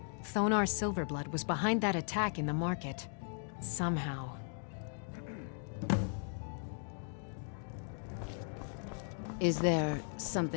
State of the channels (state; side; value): silent; right; 53 dB below the other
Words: Thonar Silverblood was behind that attack in the market. Somehow. Is there